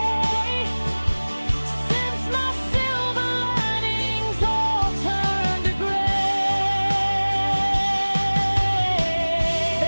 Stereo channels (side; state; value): both; inverted; correlation -1.00